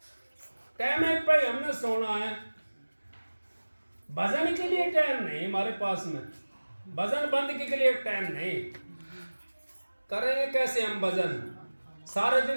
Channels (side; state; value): both; inverted; correlation -1.00